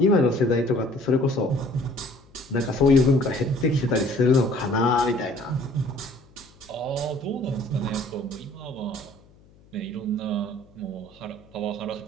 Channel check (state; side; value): noise; left; hum, 28 dB below the sound